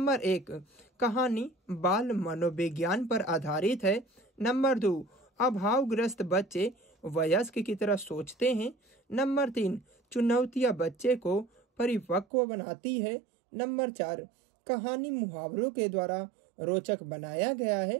1, कहानी बाल मनोविज्ञान पर आधारित है। नंबर 2, अभावग्रस्त बच्चे वयस्क की तरह सोचते हैं। नंबर 3, चुनौतियां बच्चे को परिपक्व बनाती है। नंबर 4, कहानी मुहावरों के द्वारा रोचक बनाया गया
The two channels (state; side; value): drops out; left; at 12.2 s